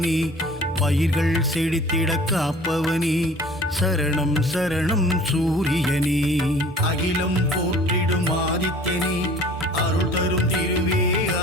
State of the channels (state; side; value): normal; both; correlation 0.48